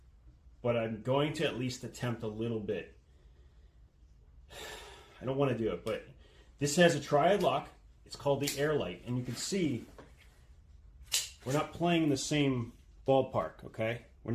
But I'm going to at least attempt a little bit. I don't want to do it, but this has a triad lock. It's called the Airlight, and you can see we're not playing in the same ballpark, okay? We're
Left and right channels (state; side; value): identical; both; correlation 1.00